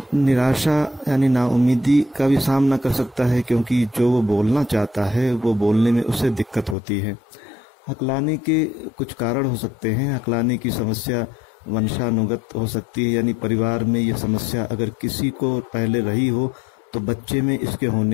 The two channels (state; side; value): drops out; right; at 6.8 s